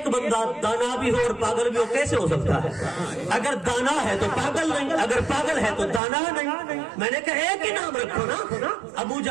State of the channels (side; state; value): left; drops out; at 6.0 s